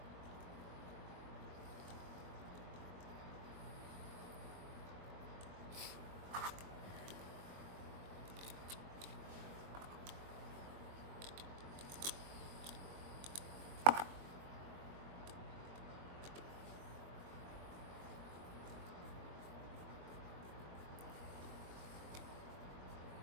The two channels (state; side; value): late; left; 22 ms